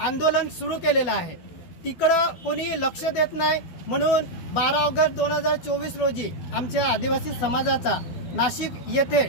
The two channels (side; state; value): right; late; 12 ms